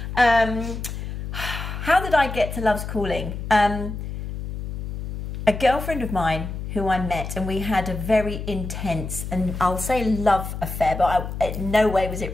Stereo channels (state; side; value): noise; left; hum, 7 dB below the sound